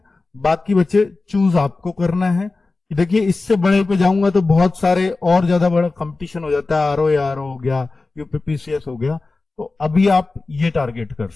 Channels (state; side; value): quieter; right; 3.6 dB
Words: बाकी बच्चे चूज आपको करना है। देखिए इससे बड़े पे जाऊंगा तो बहुत सारे और ज्यादा बड़ा कंपटीशन हो जाता है, आरओ हो गया, यूपीपीसीएस हो गया, तो अभी आप ये टारगेट कर